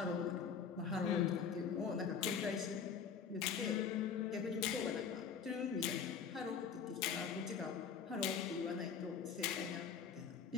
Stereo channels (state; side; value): quieter; right; 6.7 dB